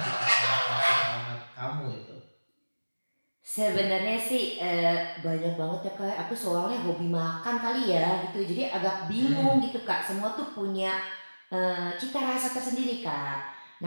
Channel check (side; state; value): both; inverted; correlation -1.00